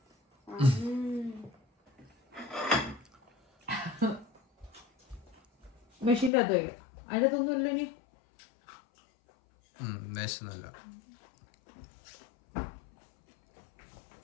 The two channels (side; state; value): right; drops out; at 6.3 s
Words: മെഷീൻ്റെ അകത്ത് വയ്ക്കാം. അതിനകത്തൊന്നും ഇല്ല. ഇനി വേസ്റ്റൊന്നുമില്ല.